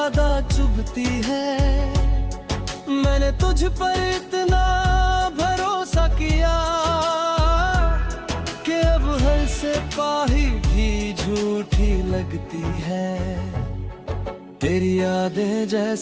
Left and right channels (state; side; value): identical; both; correlation 1.00